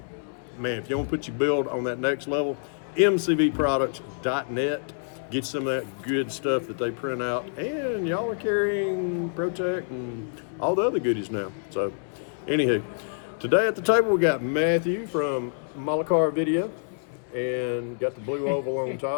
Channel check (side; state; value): right; silent; 60 dB below the other